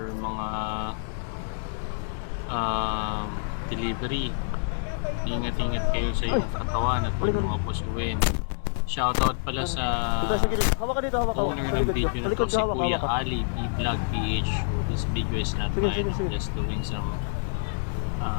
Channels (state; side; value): silent; right; digital silence